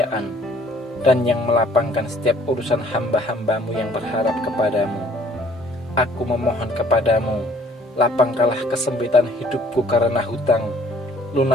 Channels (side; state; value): both; normal; correlation 0.58